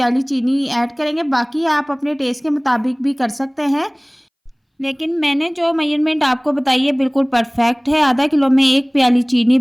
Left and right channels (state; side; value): identical; both; correlation 1.00